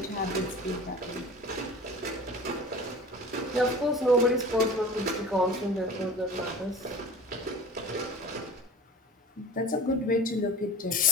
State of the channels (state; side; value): normal; both; correlation 0.39